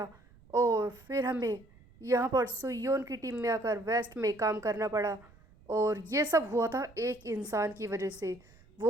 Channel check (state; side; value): noise; right; rumble, 26 dB below the sound